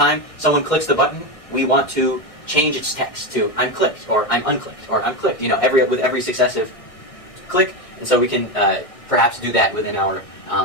someone clicks the button, we want to change its text to I'm clicked, or I'm unclicked, or I'm clicked, with every successive click. And so we can perhaps do that within our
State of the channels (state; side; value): late; right; 1.6 ms